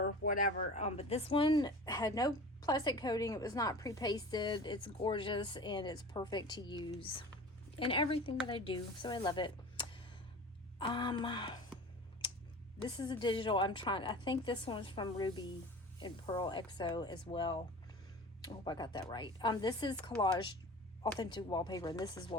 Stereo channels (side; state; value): both; normal; correlation 0.37